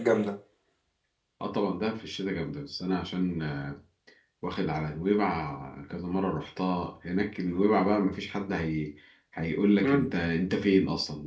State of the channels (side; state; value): both; identical; correlation 1.00